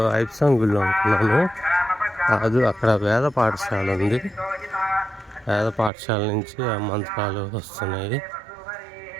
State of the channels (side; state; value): left; drops out; at 5.9 s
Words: ఐప్సాంగ్ గుళ్ళు అనుకున్నాను. కాదు, అక్కడ వేద పాఠశాల ఉంది. వేద పాఠశాల నుంచి ఆ మంత్రాలు వస్తున్నాయి.